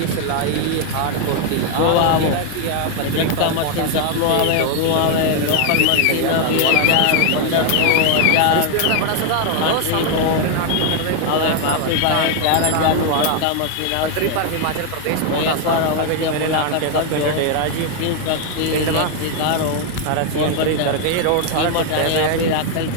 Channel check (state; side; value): different; both; correlation 0.01